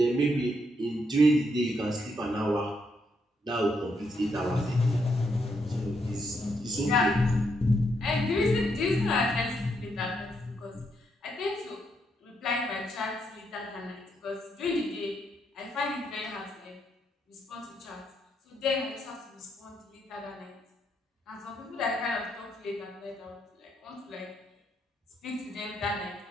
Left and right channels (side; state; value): both; normal; correlation 0.78